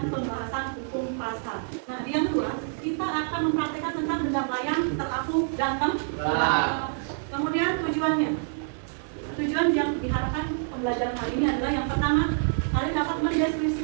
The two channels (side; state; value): left; silent; 58 dB below the other